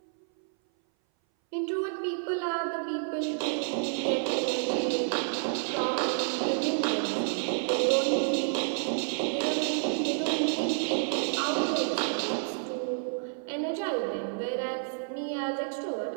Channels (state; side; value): silent; left; 58 dB below the other